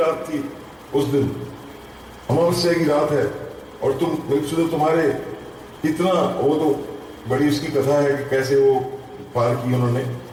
थी उस दिन, अमावस्या की रात है और तुम तुम्हारे इतना, वो तो बड़ी उसकी कथा है कि कैसे वो पार की उन्होंने।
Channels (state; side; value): identical; both; correlation 1.00